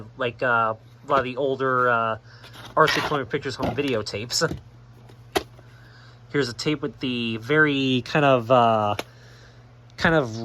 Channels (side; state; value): both; identical; correlation 1.00